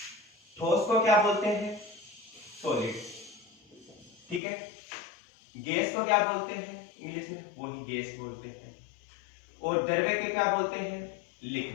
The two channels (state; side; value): drops out; right; at 4.4 s